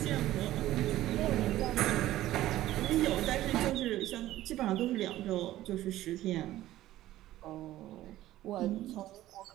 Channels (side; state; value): left; quieter; 14.8 dB